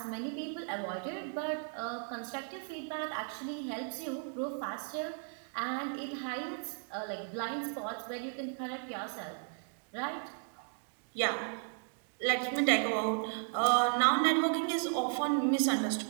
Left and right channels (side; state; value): left; silent; 54 dB below the other